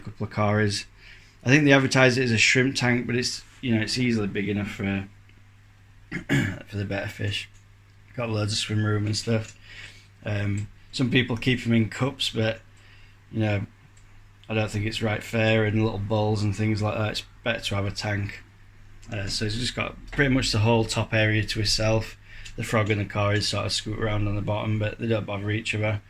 of cories. I think they advertise it as a shrimp tank, but it's it's easily big enough for for the Better Fish. Got loads of swim room and stuff. Some people keep them in cups, but I don't think it's right fair, and little bowls and things like that. It's better to have a tank. So he's just got pretty much the whole top area to himself. The frog and the cories sort of scoot around on the bottom, but they don't bother each other.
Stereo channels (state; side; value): identical; both; correlation 1.00